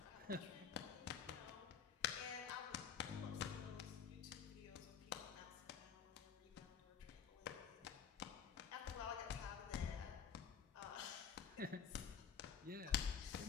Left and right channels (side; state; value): right; quieter; 7.1 dB